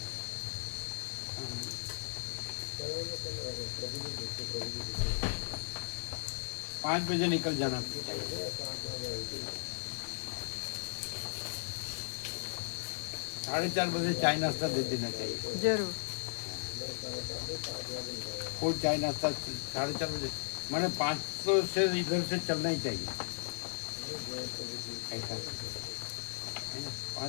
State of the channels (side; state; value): right; silent; digital silence